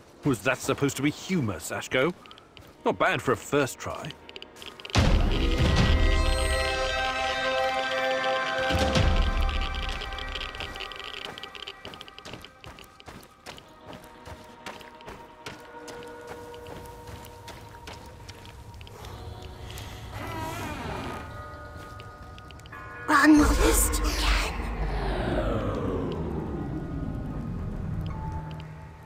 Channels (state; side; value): identical; both; correlation 1.00